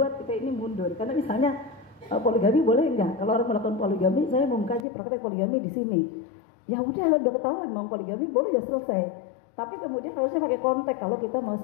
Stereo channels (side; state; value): right; drops out; at 4.9 s